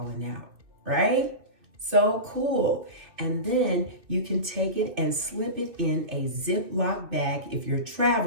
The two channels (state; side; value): late; left; 2.6 ms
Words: out, right? So cool. And then you can take it and slip it in a Ziploc bag if you're